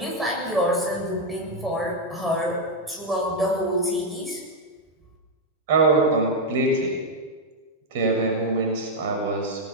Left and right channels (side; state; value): both; normal; correlation 0.02